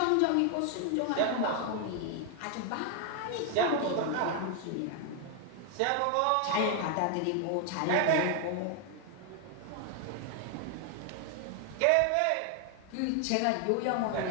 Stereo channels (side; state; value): both; different; correlation 0.00